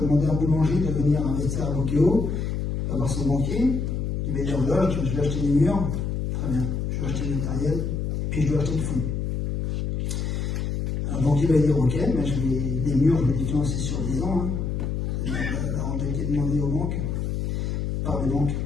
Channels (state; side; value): noise; left; hum, 1 dB below the sound